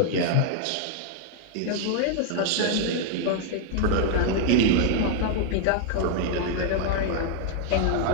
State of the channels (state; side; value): different; both; correlation 0.00